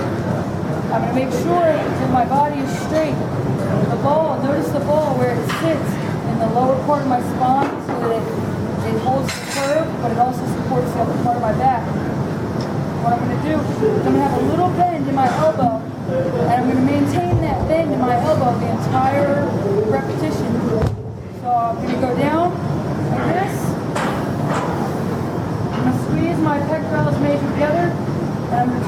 I'm going to make sure that my body is straight. The ball, notice the ball where it sits in the lower part of my spine so that it holds the curve, but it also supports the upper part of my back. What I'm going to do is I'm going to have a little bend in my elbow, and I'm going to maintain that bend in my elbow the entire repetition. So I'm going to go down like this. I'm going to squeeze my pectorals major together, and I'm going to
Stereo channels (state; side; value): identical; both; correlation 1.00